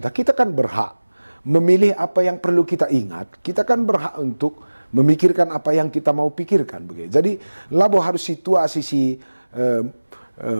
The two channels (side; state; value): both; inverted; correlation -1.00